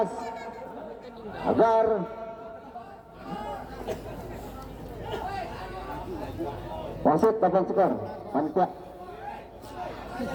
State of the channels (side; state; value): both; identical; correlation 1.00